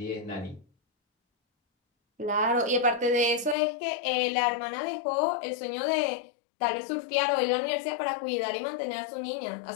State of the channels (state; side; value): drops out; right; at 3.6 s